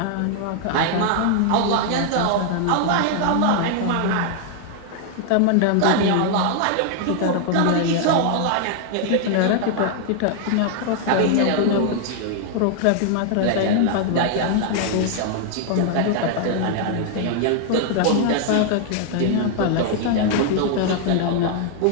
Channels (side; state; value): both; different; correlation 0.00